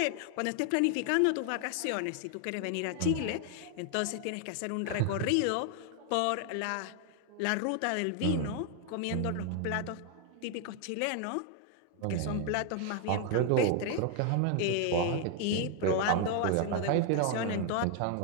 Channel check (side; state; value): both; different; correlation 0.00